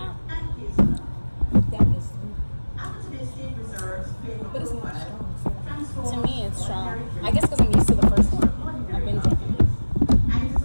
and hazelnut. That is. After the estate reserves flavor But it's not profile, strong. transforms To me, it's strong. ordinary I guess because I'm used to the first one. I've been drinking it. and it is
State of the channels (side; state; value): both; inverted; correlation -1.00